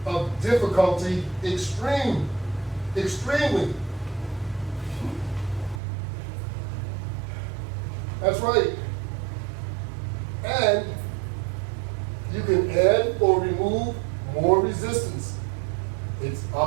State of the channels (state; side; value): drops out; left; at 5.8 s